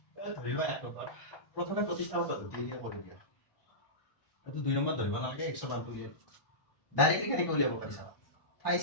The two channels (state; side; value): late; right; 1.1 ms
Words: ধৰি লোৱা এক নম্বৰ প্ৰথমে প্ৰতিস্থাপন পদ্ধতি দিয়ে কৰি দিয়া। এইটো 2 নম্বৰ ধৰিব নালাগে, 100 উলিয়াই ডাইৰেক্টলি কেনেকৈ উলিয়াব পাৰিছা?